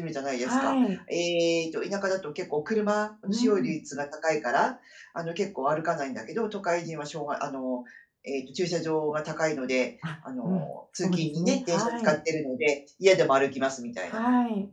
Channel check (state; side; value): identical; both; correlation 1.00